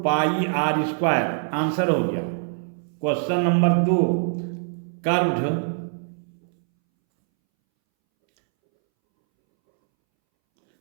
pi r square. Answer हो गया। Question number 2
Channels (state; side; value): silent; left; 63 dB below the other